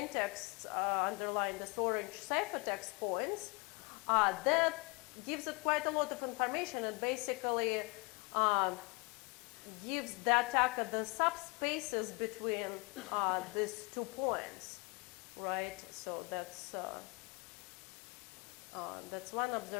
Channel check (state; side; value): quieter; right; 28.6 dB